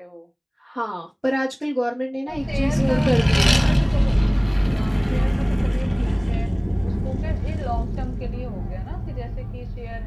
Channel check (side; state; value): both; identical; correlation 1.00